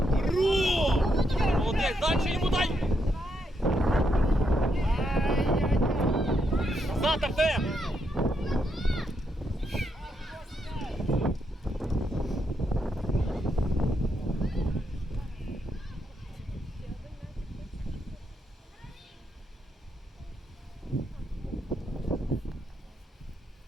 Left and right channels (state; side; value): normal; both; correlation 0.80